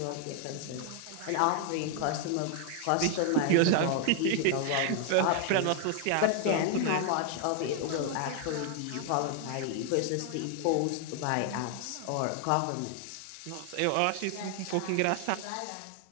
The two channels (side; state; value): both; different; correlation 0.00